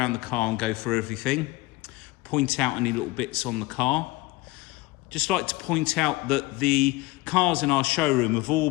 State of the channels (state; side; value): quieter; right; 19.8 dB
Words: the car and go through everything. Point out any little bits on the car. Just like to point out that the cars in our showroom have all